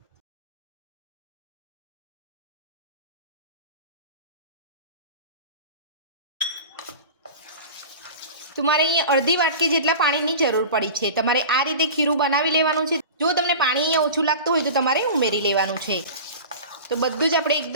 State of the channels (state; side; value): inverted; both; correlation -0.34